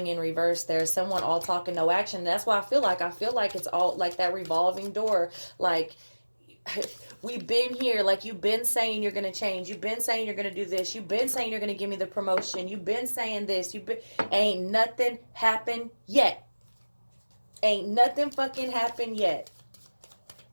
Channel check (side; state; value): both; inverted; correlation -1.00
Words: in reverse. There's someone all talk and no action. That's why I feel like it's all like that revolving door. Like we've been here. Like you've been saying you're going to change. You've been saying you're going to do this. You've been saying you're going to give me the promotion. You've been saying this. Ain't nothing happened yet. Ain't nothing fucking happened yet.